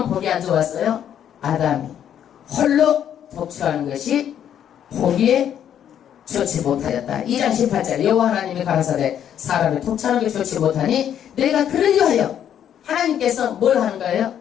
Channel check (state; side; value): quieter; right; 9.7 dB